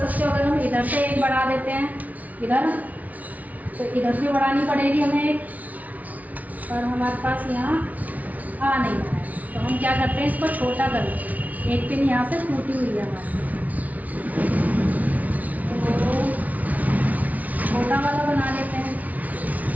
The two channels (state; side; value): late; left; 0.073 ms